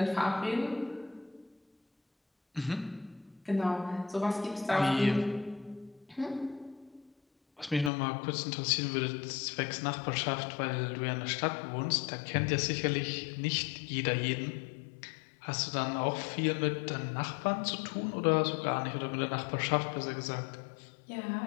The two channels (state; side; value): drops out; right; at 7.9 s